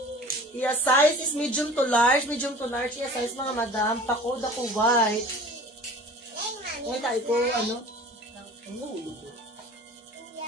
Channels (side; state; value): both; normal; correlation 0.43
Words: Iya size is medium to large. Medium to large, iya size, mga madam. Pa-code ako white. Ngayon tayo ko, ano?